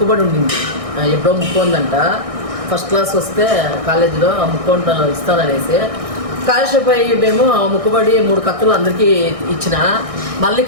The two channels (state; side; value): late; left; 1.6 ms